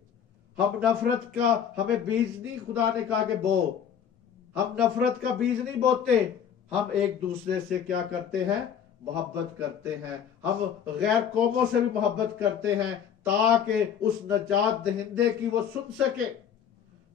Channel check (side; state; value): right; quieter; 8.3 dB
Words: हम नफरत का हमें बीज नहीं, खुदा ने कहा कि बो, हम नफरत का बीज नहीं बोते। हम एक दूसरे से क्या करते हैं? मोहब्बत करते हैं। हम गैर कौमों से भी मोहब्बत करते हैं ताकि उस नजात दहिंदे की वो सुन सके,